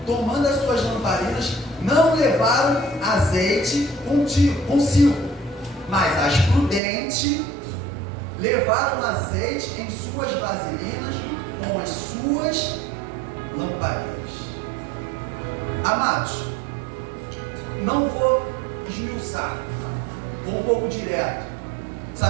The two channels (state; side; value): drops out; left; at 6.8 s